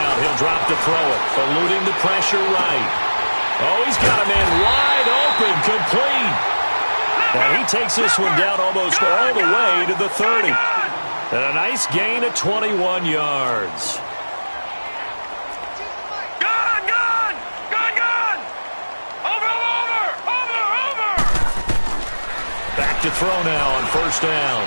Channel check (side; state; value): both; inverted; correlation -1.00